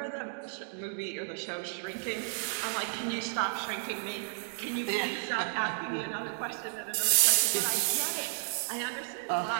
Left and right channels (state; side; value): silent; left; digital silence